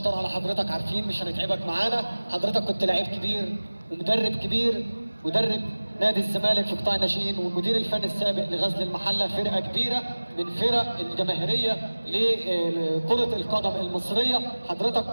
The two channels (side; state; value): both; inverted; correlation -1.00